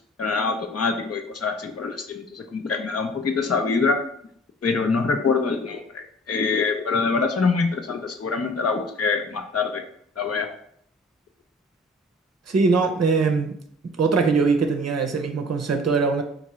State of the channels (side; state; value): both; normal; correlation 0.47